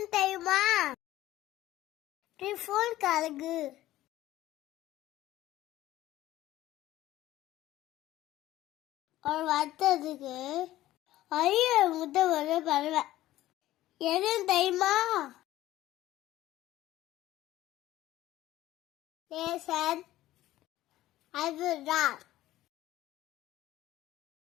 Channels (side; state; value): right; quieter; 15.1 dB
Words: தெரியுமா? டிஃபோன் கழுகு. ஒரு வருத்தத்துக்கு அரிய முட்டை ஒரு பறவை எதுன்னு தெரியுமா? அதுதான்